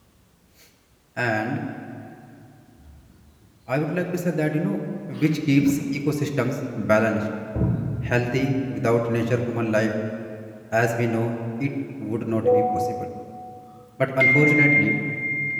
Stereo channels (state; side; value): identical; both; correlation 1.00